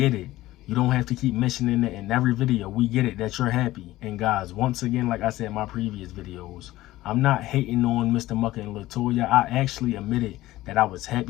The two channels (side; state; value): right; quieter; 16.5 dB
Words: it. You don't have to keep mentioning it in every video. We get it that you're happy. And guys, once again, like I said in my previous videos, I'm not hating on Mr. Mucker and Latoya. I actually admitted that I was